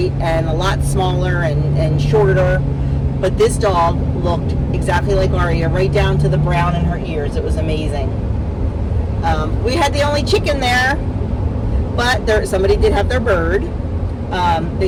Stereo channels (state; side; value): identical; both; correlation 1.00